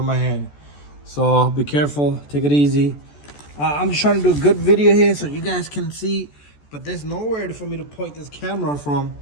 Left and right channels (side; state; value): right; late; 14 ms